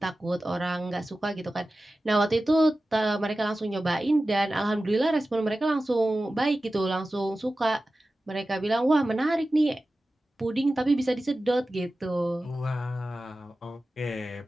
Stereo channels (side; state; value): both; normal; correlation 0.95